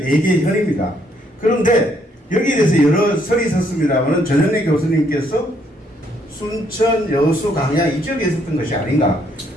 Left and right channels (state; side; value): normal; both; correlation 0.70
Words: 4개의 현입니다. 그런데 여기에 대해서 여러 설이 있었습니다만 전현래 교수님께서 순천, 여수, 강양 이 지역에 있었던 것이 아닌가